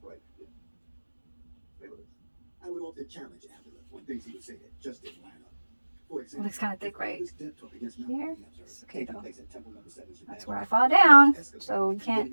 it looks kind of thick right here. It's okay though. That's where I fall down. So y'all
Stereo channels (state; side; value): inverted; both; correlation -1.00